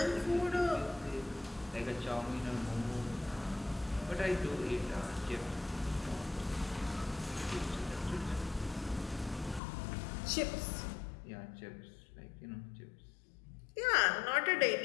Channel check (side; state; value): right; drops out; at 9.6 s